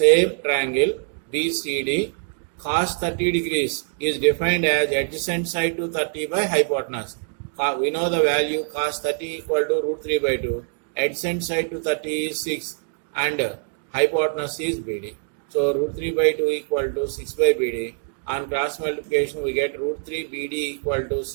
triangle BCD, cos 30 degrees is defined as adjacent side to 30 by hypotenuse. We know the value cos 30 equal to root 3 by 2. Adjacent side to 30 is 6 and hypotenuse is BD. So root 3 by 2 equal to 6 by BD. On cross multiplication we get root 3 BD equal to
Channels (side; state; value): left; silent; digital silence